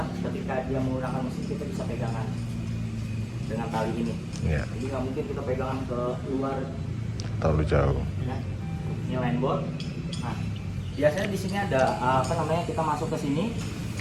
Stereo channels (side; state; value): both; identical; correlation 1.00